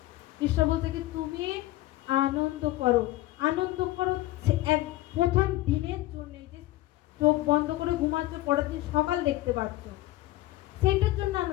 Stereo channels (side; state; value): right; quieter; 16.8 dB